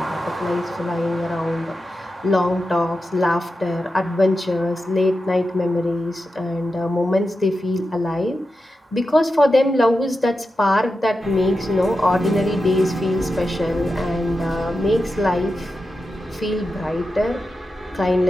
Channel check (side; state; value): both; normal; correlation 0.90